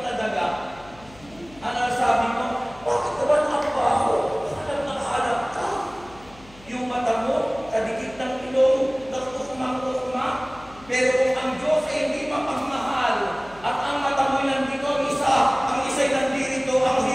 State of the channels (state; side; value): noise; left; hum, 23 dB below the sound